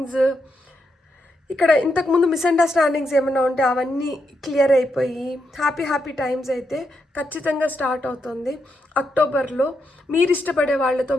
ఇక్కడ ఇంతకుముందు మిస్అండర్స్టాండింగ్స్ ఏమైనా ఉంటే అవన్నీ క్లియర్ అయిపోయి హ్యాపీ టైమ్స్ అయితే ఖచ్చితంగా స్టార్ట్ అవుతుంది. అక్టోబర్లో మీరు ఇష్టపడే వాళ్ళతో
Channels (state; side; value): normal; both; correlation 0.82